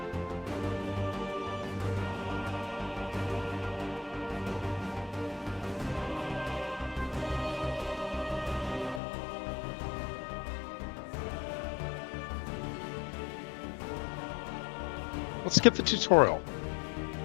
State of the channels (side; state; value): right; drops out; at 9.0 s